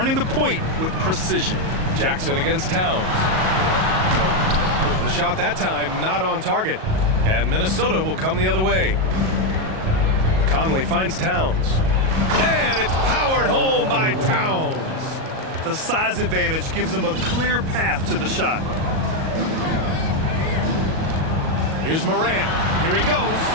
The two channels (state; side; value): late; left; 37 ms